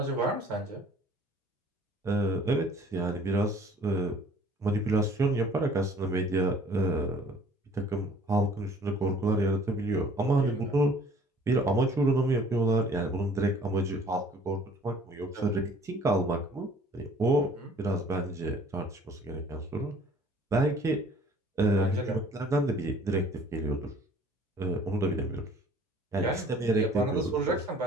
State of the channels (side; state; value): both; normal; correlation 0.53